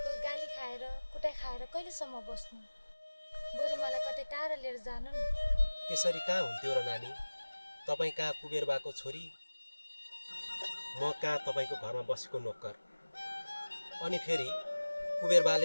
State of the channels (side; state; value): both; inverted; correlation -1.00